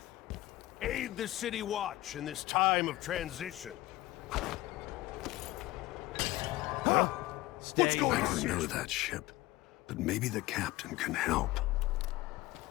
Aid the City Watch in this time of transition. Huh? What's going on? I don't know that ship, but maybe the captain can help.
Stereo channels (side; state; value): right; quieter; 17.8 dB